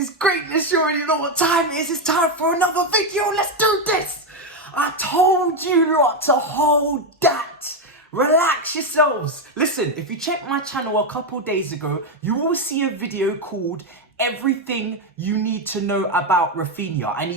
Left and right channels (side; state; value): both; normal; correlation 0.07